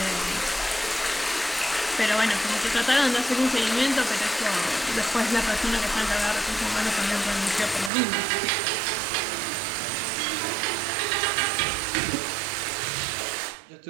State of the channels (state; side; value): drops out; left; at 7.9 s